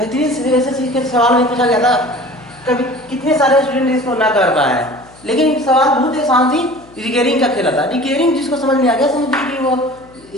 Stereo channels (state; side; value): noise; left; hum, 25 dB below the sound